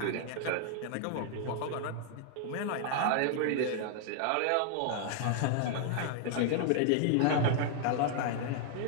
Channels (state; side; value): different; both; correlation -0.01